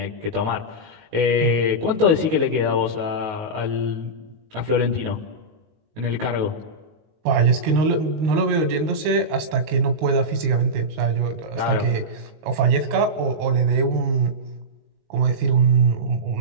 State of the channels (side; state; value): left; late; 19 ms